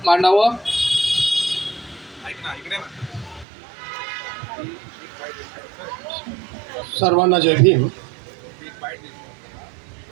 मांडावं. सर्वांना जय भीम.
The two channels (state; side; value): drops out; left; at 3.5 s